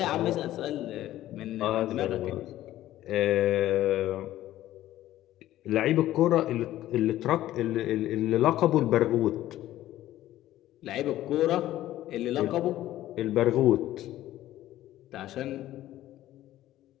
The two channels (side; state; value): right; quieter; 14.1 dB